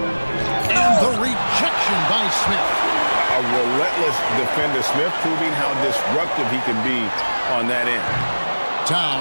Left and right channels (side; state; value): both; inverted; correlation -1.00